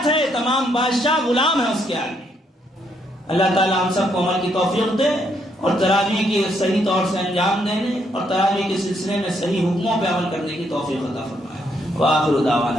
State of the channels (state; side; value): normal; both; correlation 0.74